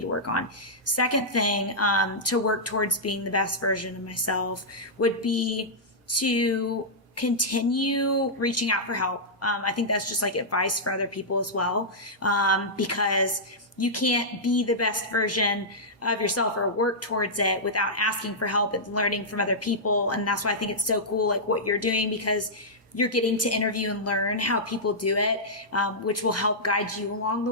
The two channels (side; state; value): both; normal; correlation -0.11